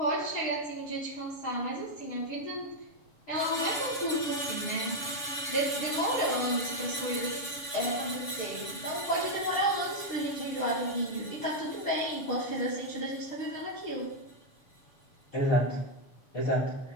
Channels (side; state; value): right; late; 7.0 ms